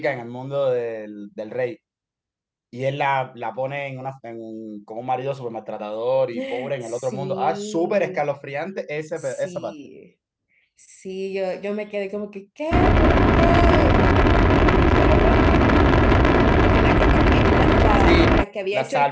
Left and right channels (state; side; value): identical; both; correlation 1.00